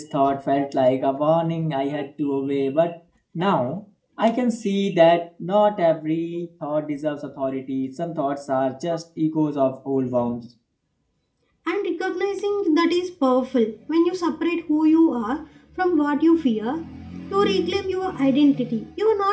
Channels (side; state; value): both; identical; correlation 1.00